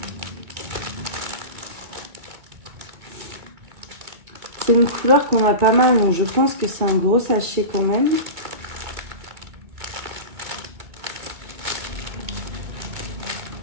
C'est une couleur qu'on a pas mal, donc je pense que c'est un gros sachet quand même.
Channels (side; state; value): left; late; 2.4 ms